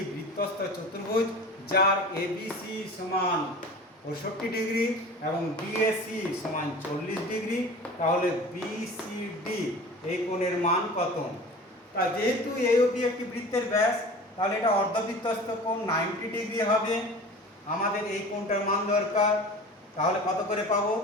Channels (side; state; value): both; normal; correlation 0.38